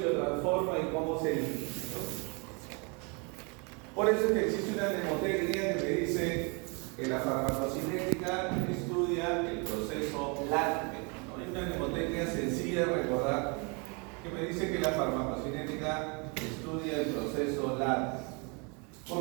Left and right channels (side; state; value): left; quieter; 32.7 dB